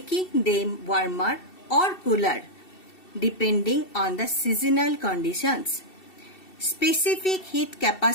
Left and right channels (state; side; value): late; right; 2.7 ms